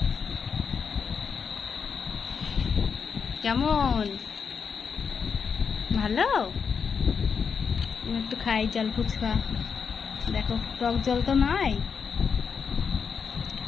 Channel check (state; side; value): quieter; right; 6.1 dB